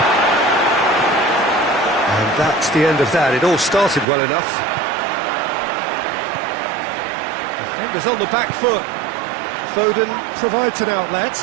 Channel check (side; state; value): left; drops out; at 4.0 s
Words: And that's the end of that. It all started well enough. Defenders on the back foot. Foden provides an